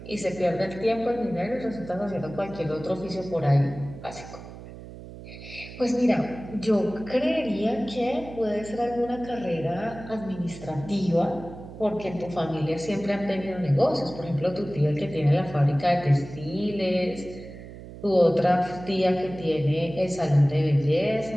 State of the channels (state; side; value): noise; right; hum, 14 dB below the sound